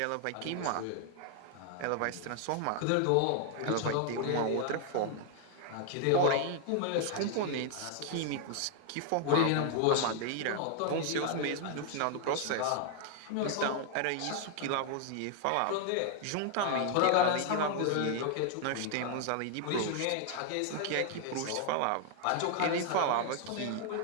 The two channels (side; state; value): both; different; correlation 0.00